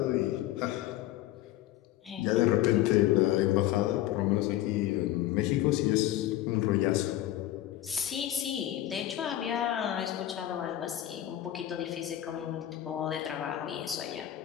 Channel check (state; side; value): quieter; right; 13.6 dB